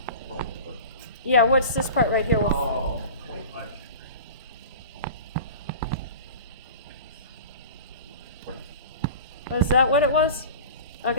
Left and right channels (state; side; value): inverted; both; correlation -0.36